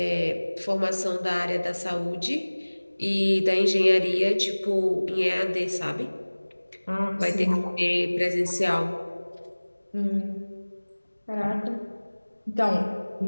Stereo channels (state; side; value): inverted; both; correlation -1.00